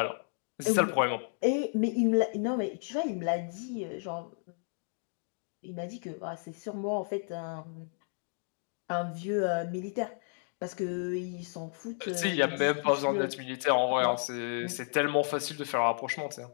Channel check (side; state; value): right; silent; 56 dB below the other